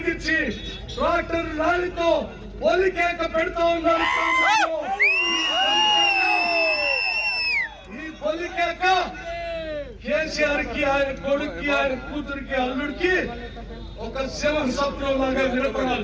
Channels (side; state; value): both; identical; correlation 1.00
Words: ట్రాక్టర్ ర్యాలీతో పొలికేక పెడతా ఉన్నారు. ఈ పొలికేక కేసీఆర్ కి, ఆయన కొడుక్కి, ఆయన కూతురికి, అల్లుడికి ఒక శివ స్వప్నం లాగా